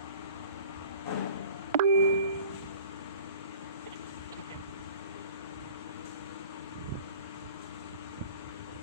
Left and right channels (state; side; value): inverted; both; correlation -0.46